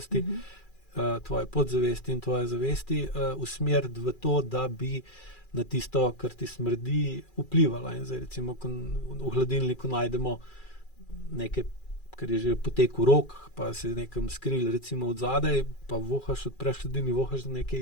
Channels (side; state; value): right; late; 2.4 ms